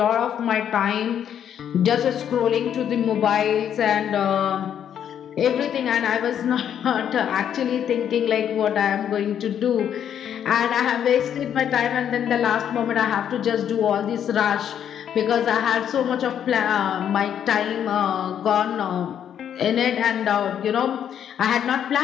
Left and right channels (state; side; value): quieter; right; 9.2 dB